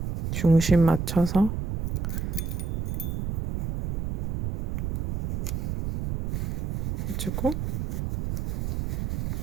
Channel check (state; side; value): noise; right; rumble, 3 dB below the sound